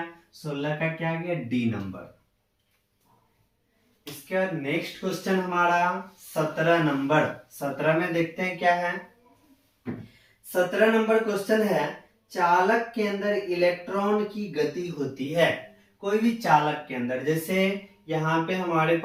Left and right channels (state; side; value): identical; both; correlation 1.00